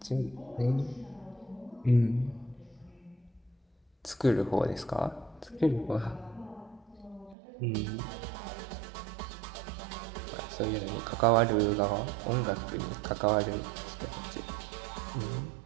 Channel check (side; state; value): left; drops out; at 7.4 s